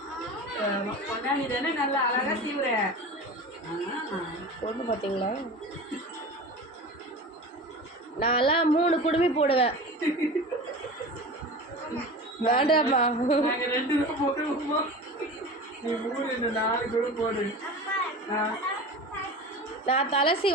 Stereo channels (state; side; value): normal; both; correlation 0.33